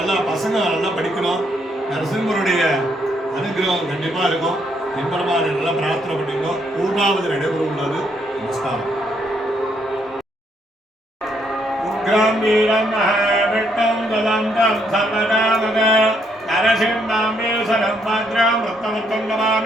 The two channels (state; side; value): normal; both; correlation 0.73